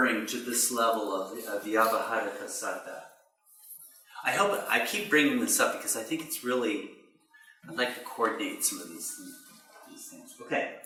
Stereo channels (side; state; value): both; identical; correlation 1.00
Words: to this level of Vyavaharika Satta. I keep bringing this up because I think it's really, I'd like to coordinate some of these things.